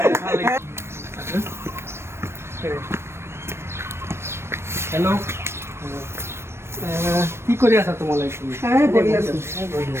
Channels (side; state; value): left; late; 0.12 ms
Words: হেল্ল' কি কৰি আছা তোমালোকে